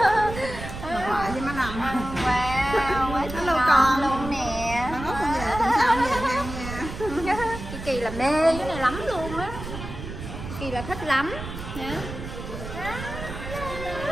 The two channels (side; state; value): right; noise; rumble, 9 dB below the sound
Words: Bà ngoại với má Năm. Wow, quá Hello ngon con luôn nè. Nó ngốc con về tuần sau về ăn nha. Kỳ là mê cái này lắm luôn á. Kỳ là thích lắm nha.